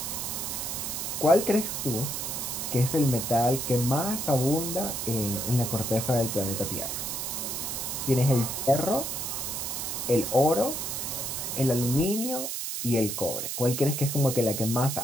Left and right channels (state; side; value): noise; right; hiss, 3 dB below the sound